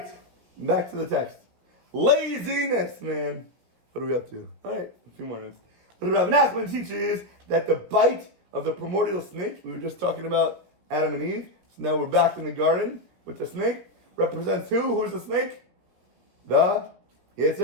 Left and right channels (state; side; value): late; left; 17 ms